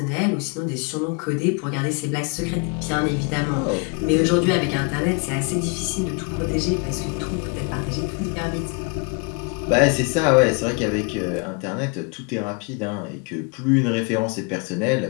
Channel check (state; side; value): quieter; right; 31.6 dB